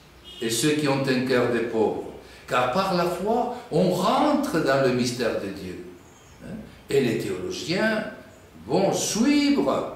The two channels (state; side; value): identical; both; correlation 1.00